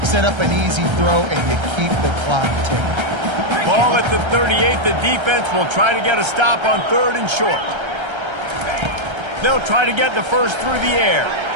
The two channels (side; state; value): left; late; 1.3 ms